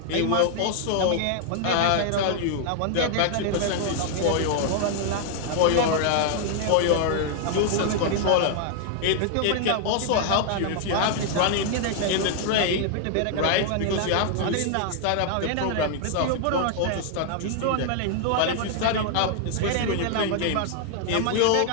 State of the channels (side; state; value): both; different; correlation 0.00